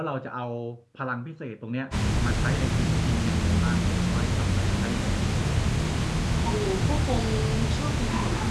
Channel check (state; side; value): identical; both; correlation 1.00